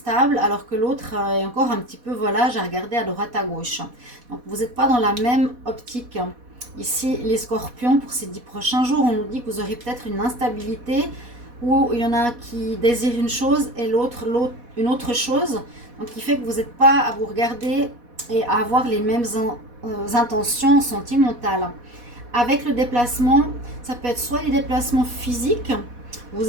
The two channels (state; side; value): late; left; 4.1 ms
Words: alors que l'autre est encore un petit peu volage à regarder à droite à gauche. Donc, vous n'êtes pas dans la même optique. Ici, les scorpions, pour ces 10 prochains jours, on nous dit que vous aurez peut-être une instabilité où il y en a un qui désire une chose et l'autre une autre chose. Donc, qui fait que vous n'êtes pas à vous regarder et à avoir les mêmes intentions sentimentales. Avec le déplacement, ça peut être soit des déplacements physiques. Vous